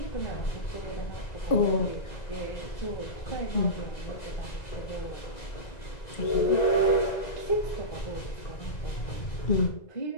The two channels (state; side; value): late; right; 2.0 ms